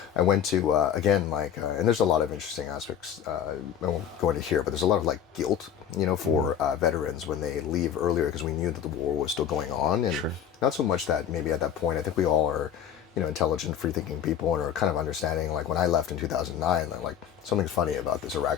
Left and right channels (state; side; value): quieter; right; 8.9 dB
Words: I went to again and there's a lot of interesting aspects. I won't go into here, but there's a lot of like guilt, for veterans when they leave earlier because we knew that the war was still going on, and not so much that maybe at that point. I think we all are, intelligent, free-thinking people and are kind of understanding. Like when I left in 2009, like something's funny about this